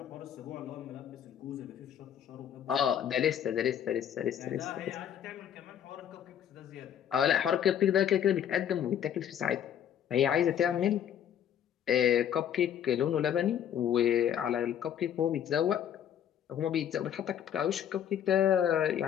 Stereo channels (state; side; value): quieter; right; 9.6 dB